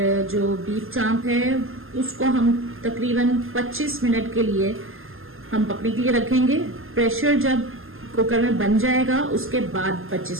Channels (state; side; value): late; left; 0.60 ms